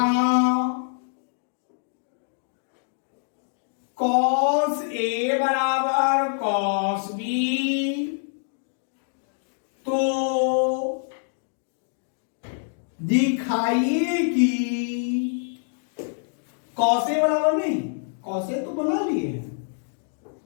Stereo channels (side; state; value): right; silent; digital silence